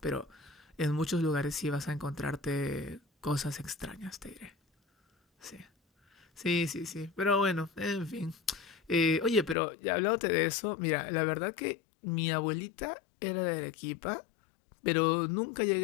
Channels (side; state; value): right; drops out; at 9.6 s